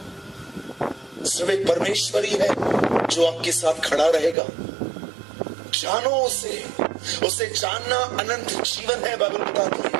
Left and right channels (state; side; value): drops out; left; at 4.4 s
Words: सिर्फ एक परमेश्वर ही है जो आपके साथ खड़ा रहेगा। जानो उसे, उसे जानना अनंत जीवन है, बाइबल बताती